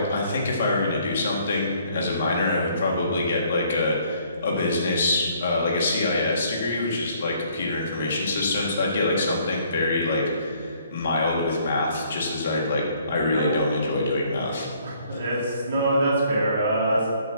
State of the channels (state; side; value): inverted; both; correlation -0.63